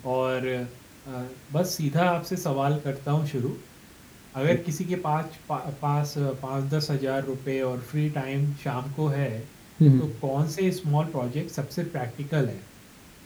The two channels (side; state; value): both; identical; correlation 1.00